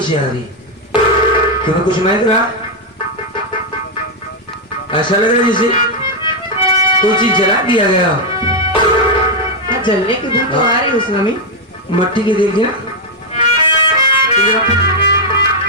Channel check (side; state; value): both; normal; correlation 0.01